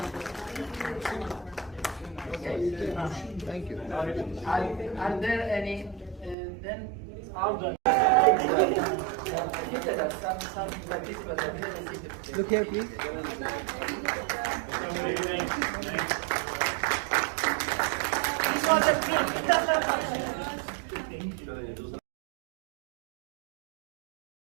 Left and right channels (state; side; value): drops out; left; at 6.4 s